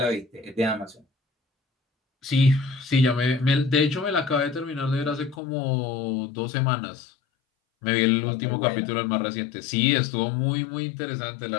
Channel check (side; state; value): right; drops out; at 5.4 s